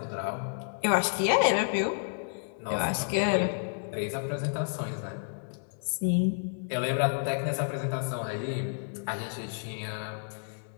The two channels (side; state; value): right; silent; digital silence